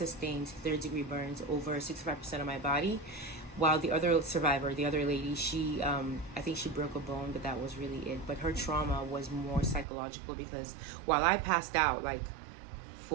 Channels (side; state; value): left; drops out; at 9.9 s